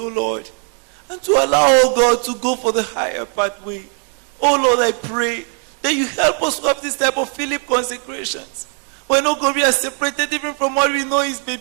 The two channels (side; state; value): left; quieter; 39.2 dB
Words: Lord. And to allow, oh God, to go for the higher pathway. Oh Lord, I pray that you help us to have this type of Philip consecrations. When, oh God, we are separated even from what we know is